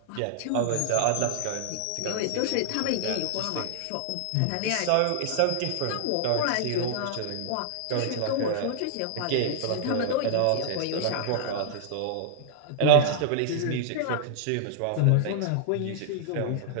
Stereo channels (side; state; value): both; different; correlation -0.01